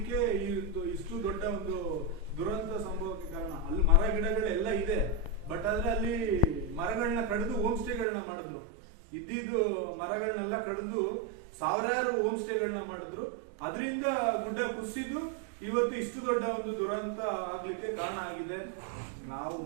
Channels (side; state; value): left; drops out; at 8.1 s